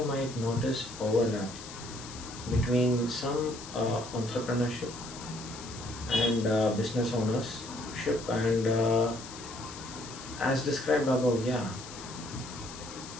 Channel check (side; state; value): left; noise; hiss, 13 dB below the sound